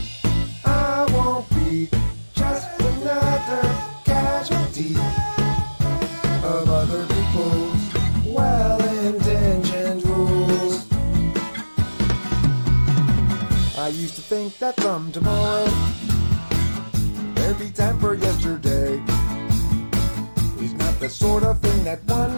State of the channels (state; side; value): inverted; both; correlation -1.00